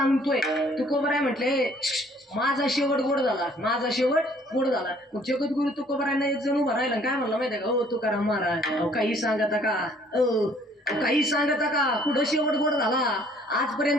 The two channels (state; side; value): normal; both; correlation 0.59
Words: तुकोबराय म्हटले माझा शेवट गोड झाला, माझा शेवट गोड झाला. मग जगद्गुरु तुकोबरायांना एक जण उभा राहिला, काय म्हणलं माहितीये का, हो तुकाराम महाराज अहो काही सांगता का, काही सांगता का, कुठं शेवट गोड झाला?